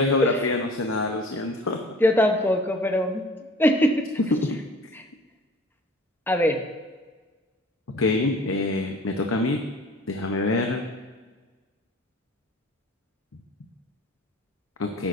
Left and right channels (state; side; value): normal; both; correlation 0.47